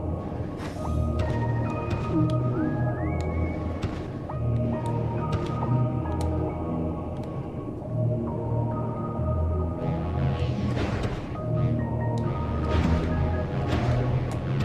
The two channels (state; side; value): identical; both; correlation 1.00